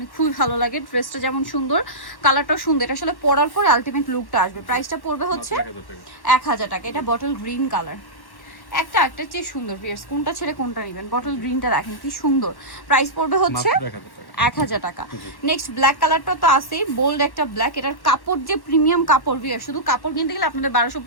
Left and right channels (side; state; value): right; late; 1.1 ms